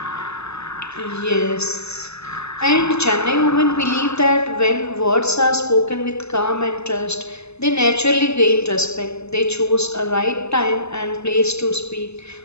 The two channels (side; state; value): right; late; 0.80 ms